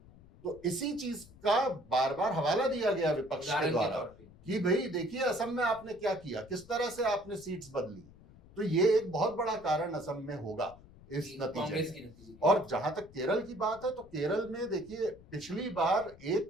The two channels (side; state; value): left; noise; rumble, 22 dB below the sound